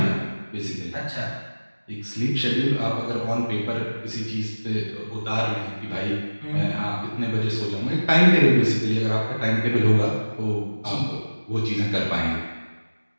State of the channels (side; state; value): both; inverted; correlation -1.00